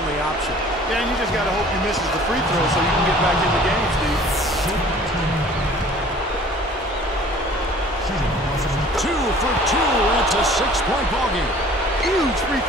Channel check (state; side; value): normal; both; correlation 0.50